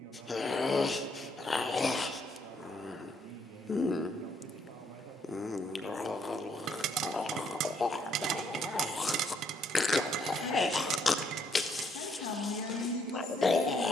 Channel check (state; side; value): normal; both; correlation 0.71